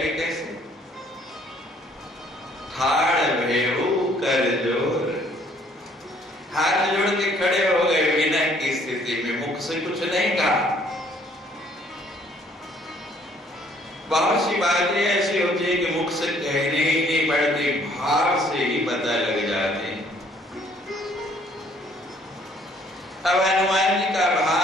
कैसे? ठाड़ भेऊ कर जोर, हाथ जोड़ के खड़े हो गए विनय की स्थिति में, मुख से कुछ नहीं कहा। बहुत सी बातें ऐसी होती है कि मुख से कहने ही नहीं पड़ती, भाव से ही पता लग जाते हैं। अब हनुमान जी का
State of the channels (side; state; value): both; normal; correlation 0.62